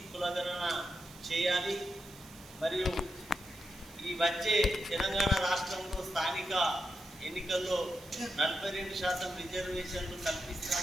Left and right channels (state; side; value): noise; right; hiss, 20 dB below the sound